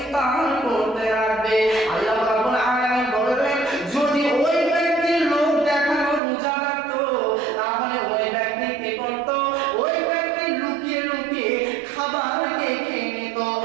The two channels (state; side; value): drops out; left; at 6.2 s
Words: করতে রাখবে। আল্লাহ রাব্বুল আলামিন বললেন যদি ওই ব্যক্তি লোক দেখানো রোজা রাখতো তাহলে ওই ব্যক্তি কি করত? ওই ব্যক্তি লুকিয়ে লুকিয়ে খাবারকে খেয়ে নিত,